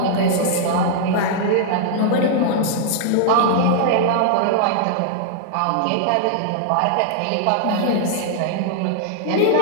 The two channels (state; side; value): different; both; correlation -0.01